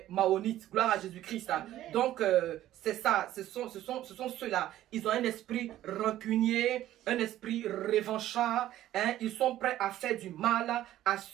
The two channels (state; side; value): quieter; left; 13.5 dB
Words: Maonites. Gloire à Jésus-Christ. Donc, c'est ça. Ce sont ceux-là. Ils ont un esprit rancunier, un esprit revanchard. Hein. Ils sont prêts à faire du mal à